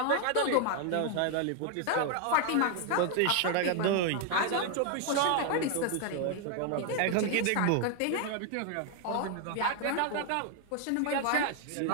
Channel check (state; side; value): different; both; correlation 0.00